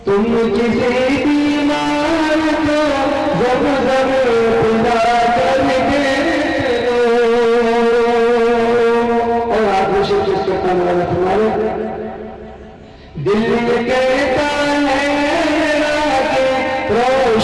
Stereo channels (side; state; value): both; identical; correlation 1.00